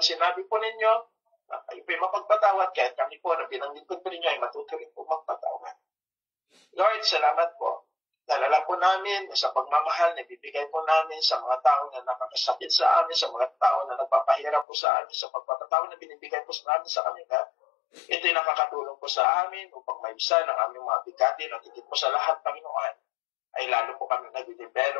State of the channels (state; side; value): drops out; right; at 14.7 s